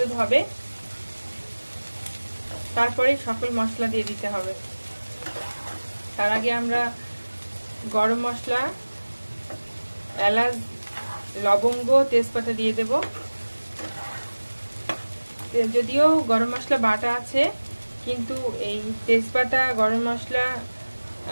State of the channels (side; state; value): both; inverted; correlation -1.00